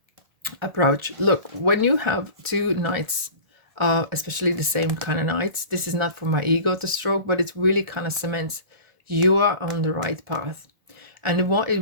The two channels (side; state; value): left; late; 1.4 ms